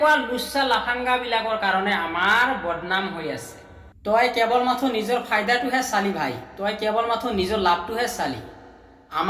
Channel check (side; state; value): both; identical; correlation 1.00